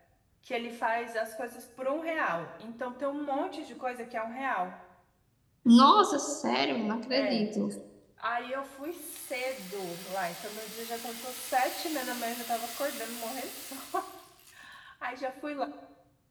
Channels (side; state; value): both; identical; correlation 1.00